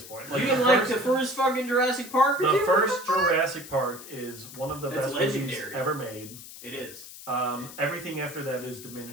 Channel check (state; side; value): noise; left; hiss, 15 dB below the sound